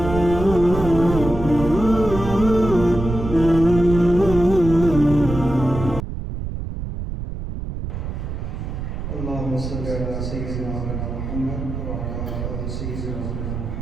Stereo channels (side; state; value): right; noise; rumble, 6 dB below the sound